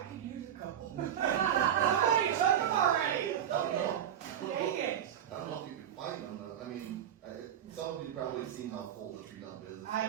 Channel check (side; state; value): left; quieter; 9.7 dB